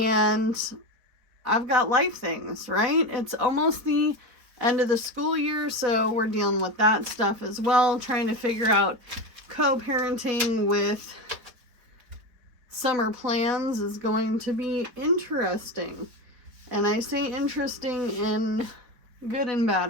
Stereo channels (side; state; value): left; late; 4.5 ms